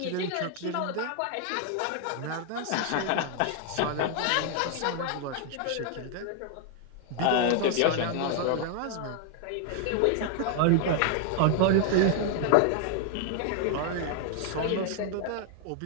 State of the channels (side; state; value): both; different; correlation 0.00